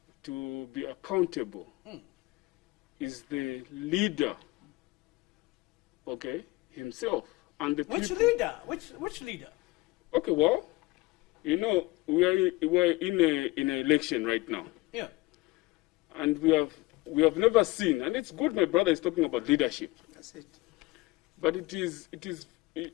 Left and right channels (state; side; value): quieter; right; 21.4 dB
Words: be accountable is the leader, okay, himself. And the Which people. leader? Which leader? Okay, well, we're in an election right now. Yeah. And we have never seen, and it's good my brother is talking about leadership. That's it. But